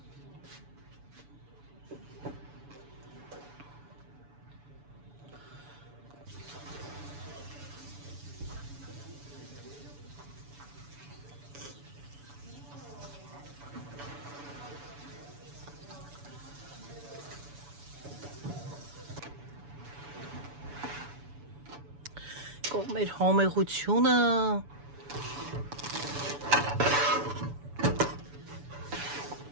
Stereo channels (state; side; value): late; left; 7.0 ms